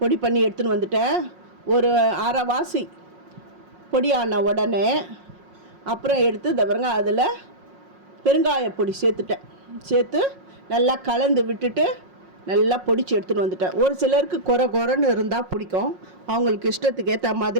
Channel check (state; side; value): late; left; 5.5 ms